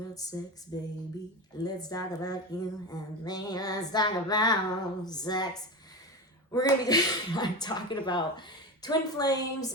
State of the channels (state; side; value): normal; both; correlation 0.23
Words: sex, baby. Let's talk about you and me. Let's talk about sex. We're going to be talking about twin flames